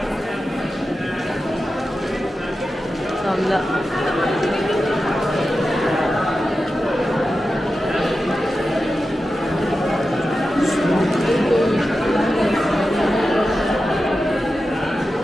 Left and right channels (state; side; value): normal; both; correlation 0.92